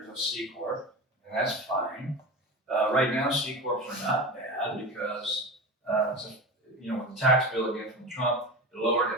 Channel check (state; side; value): normal; both; correlation 0.27